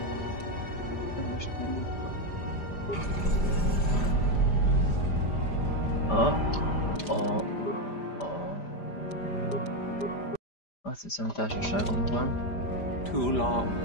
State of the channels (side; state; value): right; late; 5.0 ms